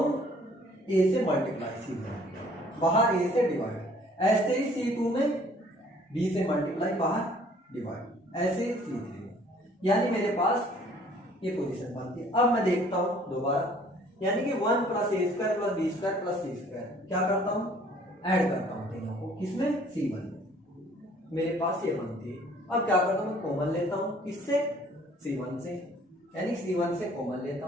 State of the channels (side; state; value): both; normal; correlation 0.57